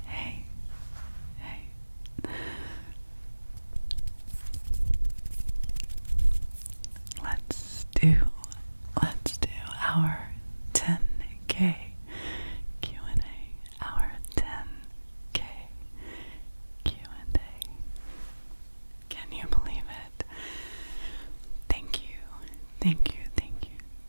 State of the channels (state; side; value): inverted; both; correlation -1.00